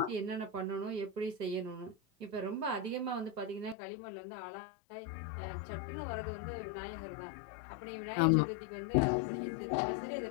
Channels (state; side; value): drops out; right; at 3.8 s